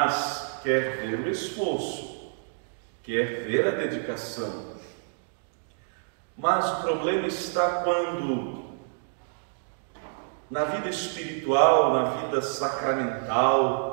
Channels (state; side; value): silent; left; digital silence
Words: quer ver o esforço, quer ver a dedicação. Mas o problema está quando, na vida espiritual, na vida